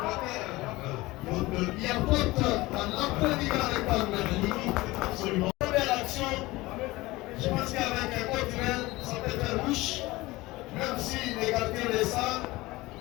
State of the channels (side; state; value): right; quieter; 20.2 dB